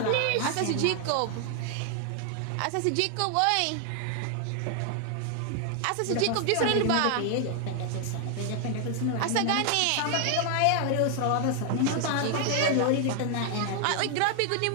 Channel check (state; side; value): different; both; correlation 0.00